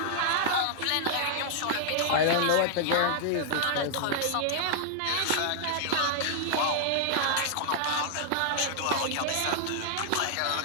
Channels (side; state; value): both; different; correlation 0.00